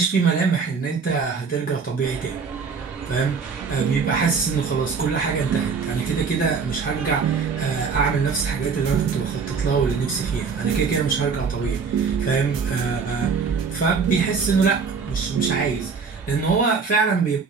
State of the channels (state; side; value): quieter; left; 5.3 dB